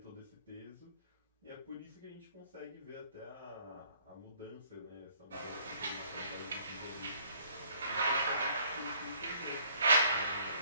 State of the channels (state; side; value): inverted; both; correlation -0.61